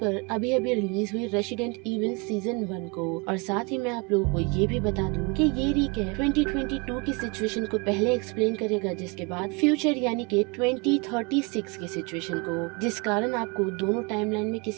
अभी अभी रिलीज हुई रेसिडेंट इविल सीजन 1 को। और साथ ही मैं आप लोगों को ये भी बता दूं कि ये रिकैप 2022 की सिचुएशन को पहले एक्सप्लेन करेगा, जिसके बाद फ्यूचर यानी कि 2036 की सिचुएशन को, जिस कारण आपको दोनों टाइमलाइन में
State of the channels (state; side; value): quieter; left; 29.3 dB